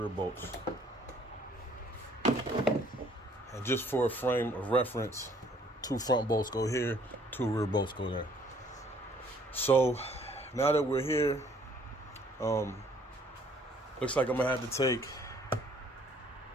bolts. And just for a frame of reference, two front bolts go here, two rear bolts go there. So now that we're here, looks like I'm gonna have to take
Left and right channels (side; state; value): both; normal; correlation 0.61